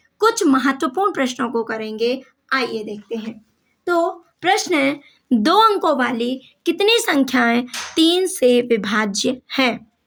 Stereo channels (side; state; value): both; identical; correlation 1.00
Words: कुछ महत्वपूर्ण प्रश्नों को करेंगे। आइए देखते हैं। तो प्रश्न है, दो अंकों वाली कितनी संख्याएं 3 से विभाज्य हैं?